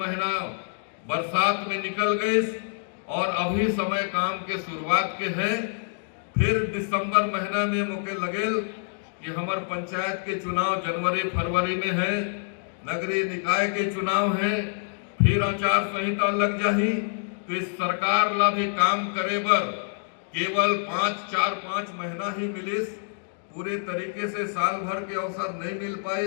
बरसात में निकल गए और अभी समय काम के शुरुआत के है। फिर दिसंबर महीना में मौके लगे कि हमारे पंचायत के चुनाव जनवरी फरवरी में है, नगरीय निकाय के चुनाव है, फिर आचार संहिता लग जाही। तो इस सरकार ला भी काम करे बर केवल 5 महीना ही मिलिस, पूरे तरीके से साल भर के अवसर नहीं मिल पाए।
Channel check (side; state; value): right; silent; digital silence